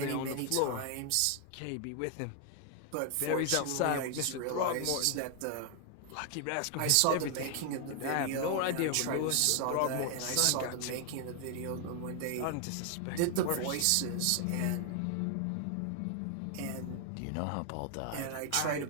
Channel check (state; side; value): different; both; correlation 0.00